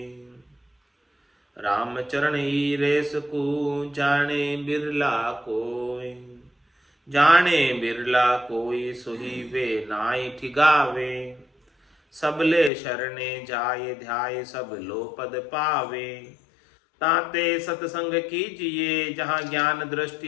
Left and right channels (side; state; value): right; drops out; at 12.7 s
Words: राम चरण ही रेस को जाने बिरला कोई। जाने बिरला कोई सोही वे नाई ठिगावे। सबले शरणे जाय ध्याय सब लो पद पावे। ताते सत्संग कीजिए जहाँ ज्ञान